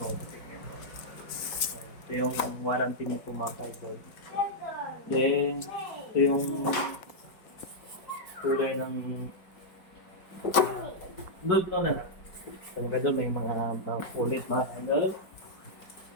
yung warranty niyo po mga kaidol. Then, ito yung kulay ng nude no na. So mga kaidol, may mga ulit mga kaidol.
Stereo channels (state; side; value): late; right; 4.9 ms